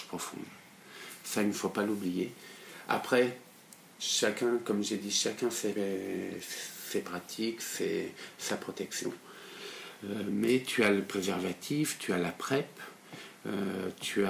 profonde. Ça, il ne faut pas l'oublier. Après, chacun, comme j'ai dit, chacun ses pratiques, sa protection. Mais tu as le préservatif, tu as la PrEP, tu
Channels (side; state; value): both; identical; correlation 1.00